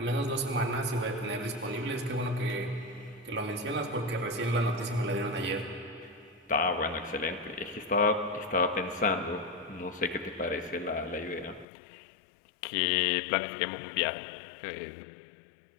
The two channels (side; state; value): right; drops out; at 11.7 s